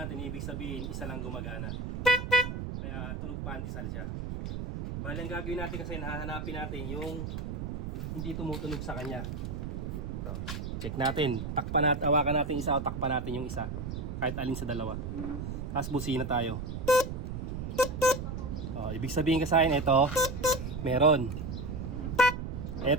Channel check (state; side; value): noise; right; rumble, 5 dB below the sound